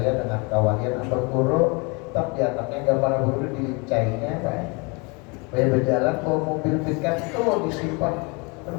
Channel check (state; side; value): quieter; right; 30.1 dB